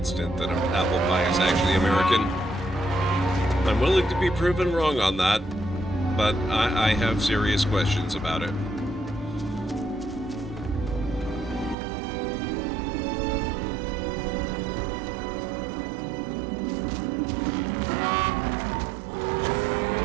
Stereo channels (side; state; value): left; drops out; at 11.8 s